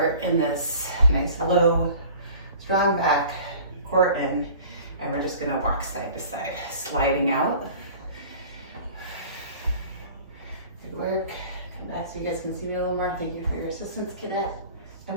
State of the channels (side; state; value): both; inverted; correlation -0.45